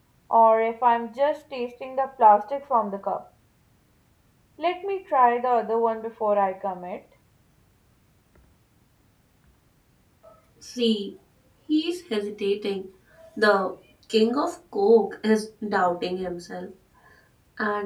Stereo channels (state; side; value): identical; both; correlation 1.00